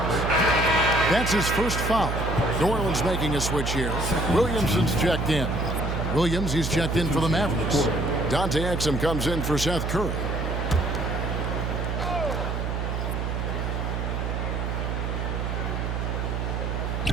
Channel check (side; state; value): right; noise; hum, 1 dB below the sound